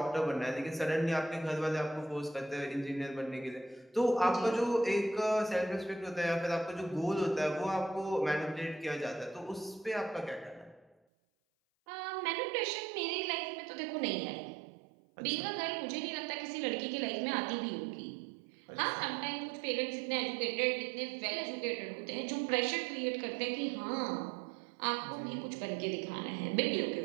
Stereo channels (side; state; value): left; drops out; at 11.0 s